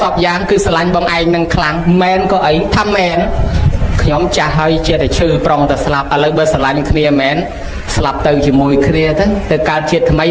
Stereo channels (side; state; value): both; identical; correlation 1.00